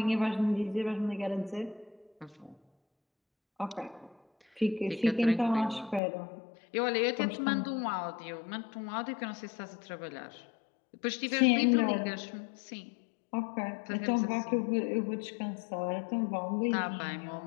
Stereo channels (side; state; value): right; drops out; at 6.0 s